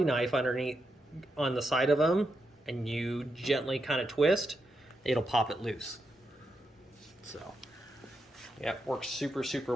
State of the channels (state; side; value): normal; both; correlation 0.84